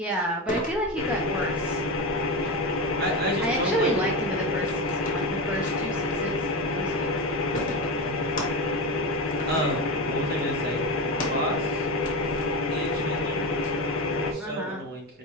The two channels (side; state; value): both; normal; correlation 0.19